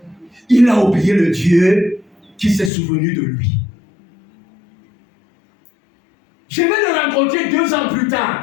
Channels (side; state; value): right; drops out; at 2.7 s